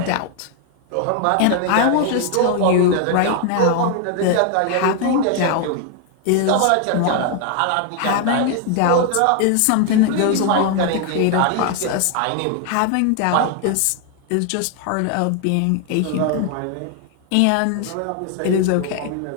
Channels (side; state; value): both; different; correlation 0.00